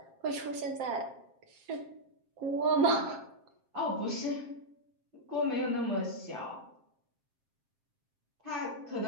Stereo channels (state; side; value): late; left; 7.5 ms